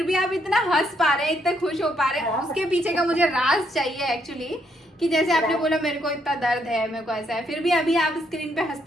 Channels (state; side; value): normal; both; correlation 0.73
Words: भी आप इतना हंस पा रहे हैं, इतने खुश हो पा रहे हैं। हाँ। उसके पीछे का मुझे राज चाहिए एक्चुअली, कि जैसे आपने बोला मेरे को इतना दर्द है, मेरे को ऐसा है, फिर भी अभी आप स्क्रीन पे